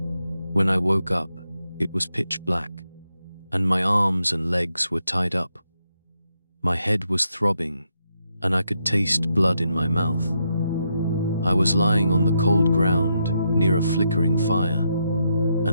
When I woke up, it was pitch black, and my arms and legs were tied up. My head was throbbing, and I could taste blood in my mouth. I was lying on the cold ground near a flickering fire,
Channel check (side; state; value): both; inverted; correlation -0.80